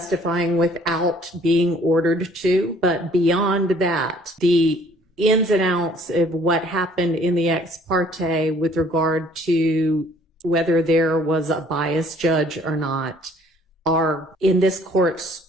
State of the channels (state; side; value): normal; both; correlation 0.58